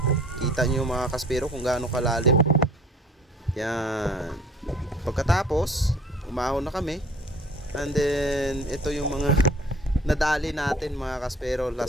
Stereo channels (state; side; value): normal; both; correlation 0.51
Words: kita nyo mga kaspero kung gaano kalalim. Yan. Pagkatapos umahon na kami. And then ito yung mga nadali natin mga kaspero,